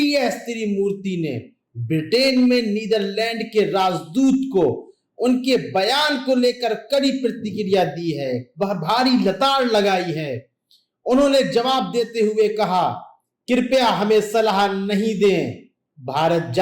त्रिमूर्ति ने ब्रिटेन में नीदरलैंड के राजदूत को उनके बयान को लेकर कड़ी प्रतिक्रिया दी है, वह भारी लताड़ लगाई है। उन्होंने जवाब देते हुए कहा, कृपया हमें सलाह नहीं दें, भारत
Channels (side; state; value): both; identical; correlation 1.00